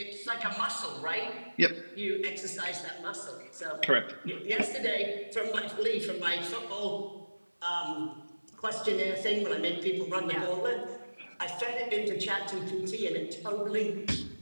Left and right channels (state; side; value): inverted; both; correlation -1.00